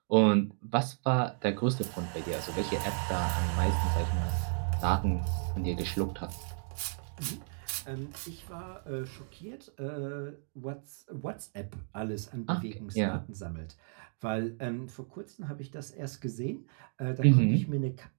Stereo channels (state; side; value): silent; left; 56 dB below the other